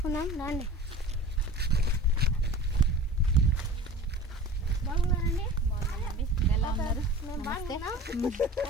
రండి. బాగున్నారండి? ఎలా ఉన్నారు? మేము బాగున్నా.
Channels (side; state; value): both; normal; correlation 0.38